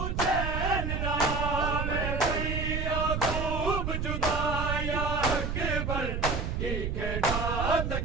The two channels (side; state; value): right; noise; rumble, 2 dB below the sound